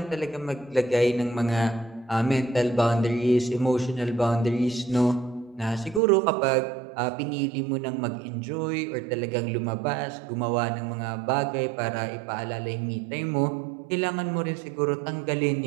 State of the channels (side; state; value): left; drops out; at 6.0 s